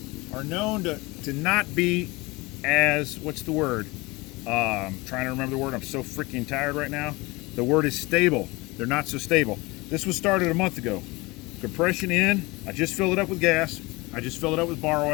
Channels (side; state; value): right; quieter; 23.6 dB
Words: are known to not be as, what's the word? I'm trying to remember the word. I'm so freaking tired right now. The word is stable. They're not so stable. This was started a month ago. Compression in. I just filled it up with gas. I just filled it up with bar